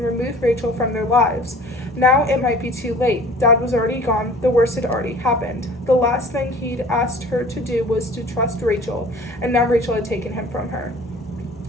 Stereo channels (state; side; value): normal; both; correlation 0.46